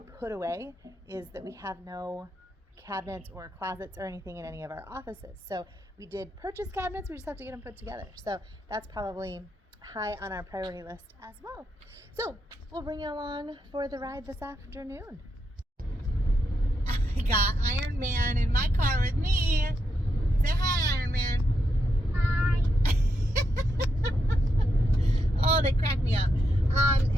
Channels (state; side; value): normal; both; correlation 0.82